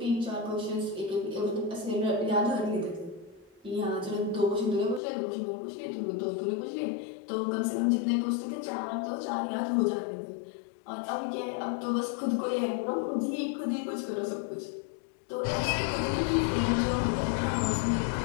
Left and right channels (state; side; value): drops out; right; at 5.0 s